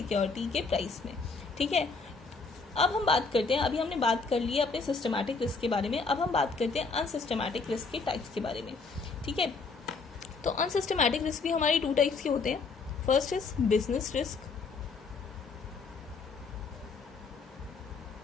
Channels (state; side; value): quieter; right; 4.4 dB